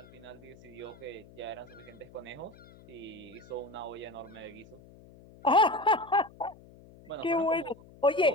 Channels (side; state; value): left; noise; hum, 22 dB below the sound